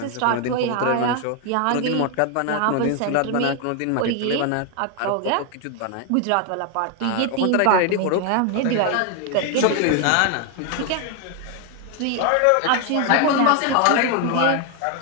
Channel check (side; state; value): both; different; correlation 0.01